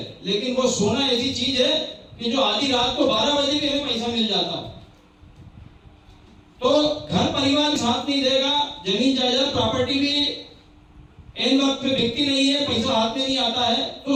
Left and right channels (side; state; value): both; identical; correlation 1.00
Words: लेकिन वो सोना ऐसी चीज है कि जो आधी रात को 12 बजे भी हमें पैसा मिल जाता है। तो घर परिवार साथ नहीं देगा, जमीन जायदाद प्रॉपर्टी भी एन वक्त पे बिकती नहीं है, पैसा हाथ में नहीं आता है,